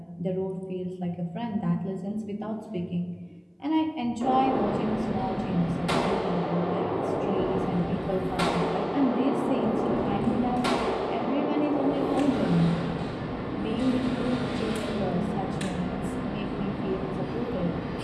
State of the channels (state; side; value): identical; both; correlation 1.00